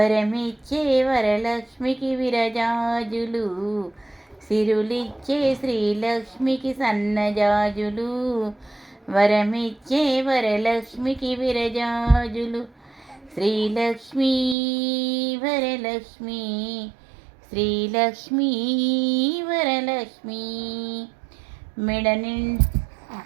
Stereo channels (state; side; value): drops out; left; at 14.6 s